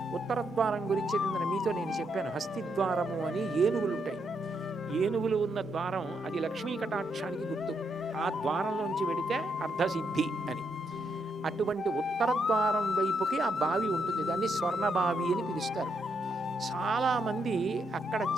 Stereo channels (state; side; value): normal; both; correlation 0.78